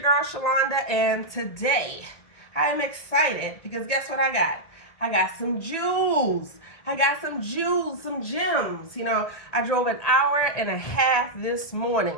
girl Shalonda, and today I am excited because guess what I got? I got some jewels. Some gems. You know, I drove an hour and a half this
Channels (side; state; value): right; late; 1.8 ms